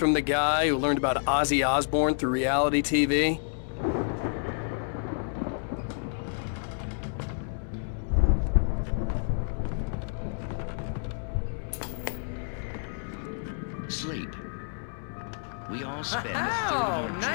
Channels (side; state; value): right; silent; 58 dB below the other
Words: the guy who learned about Ozzy Osbourne through reality TV? Sleep. We all spend a third Oh, of our